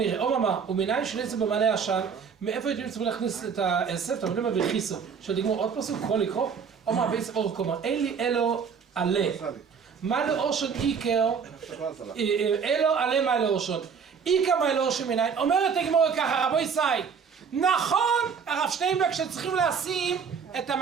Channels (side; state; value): left; quieter; 6.4 dB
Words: אוממה, ומניין של עשב במלא עשן, מאיפה הייתם צריכים להכניס את העשב? אתה מבין מה וכיסו, של תגמור עוד פסוק, יכול לקרוא? אוממה, בעצם אור קומה, אין לי אלו עלה. מה לאושון איקר, אלו עלה מה לאושון. איקר מה לאושון מניין, אומרת הגמורה ככה, רבו ישי, נכון, הרב שטיינברג שצריכים לשים את